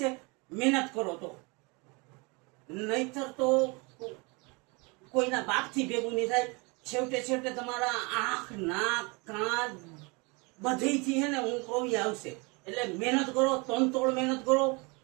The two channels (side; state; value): left; quieter; 28.8 dB